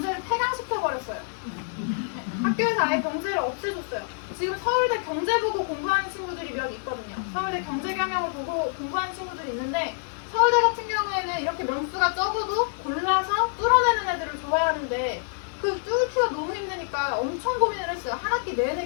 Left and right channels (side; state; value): right; silent; digital silence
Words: 폐강시켜버렸어요. 학교에서 아예 경제를 없애줬어요. 지금 서울대 경제 보고 공부하는 친구들이 몇 있거든요. 서울대 경제경영을 보고 공부하는 친구들이 있는데, 서울대 같은 경우에는 이렇게 명수가 적어도 골라서 뚫어내는 애들을 좋아하는데, 그 뚫기가 너무 힘드니까 엄청 고민을 했어요. 한 학기